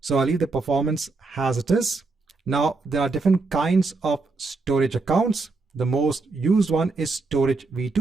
I'll leave the performance as it is. Now there are different kinds of storage accounts. The most used one is storage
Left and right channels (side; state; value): left; quieter; 3.8 dB